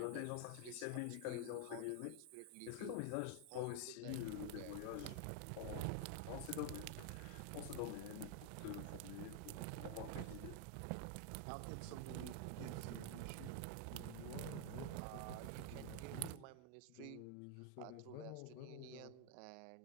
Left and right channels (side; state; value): both; different; correlation 0.01